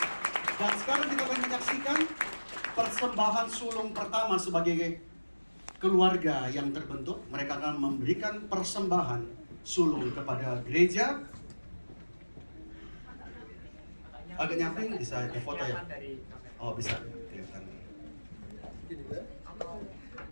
Dan sekarang kita akan menyaksikan persembahan sulung pertama sebagai keluarga yang terbentuk. Mereka akan memberikan persembahan sulung kepada gereja. Agak nyamping, bisa difoto ya? Oh, bisa. Kelihatan.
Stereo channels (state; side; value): inverted; both; correlation -1.00